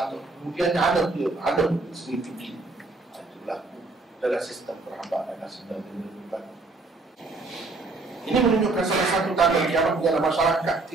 tahu. Kemudian anak dia sendiri tinggi. Itu berlaku dalam sistem perhambaan dan sistem penyelidikan. Ini menunjukkan salah satu tanda kiamat dalam masyarakat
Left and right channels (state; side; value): quieter; left; 3.5 dB